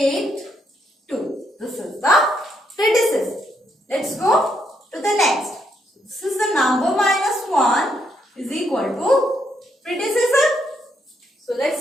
2. This is the predecessor. Let's go to the next. This is the number minus 1 is equal to predecessor. So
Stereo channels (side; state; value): both; normal; correlation 0.76